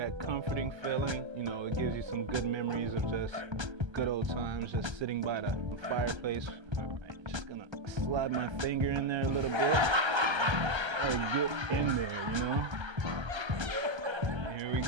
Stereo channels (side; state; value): left; late; 1.3 ms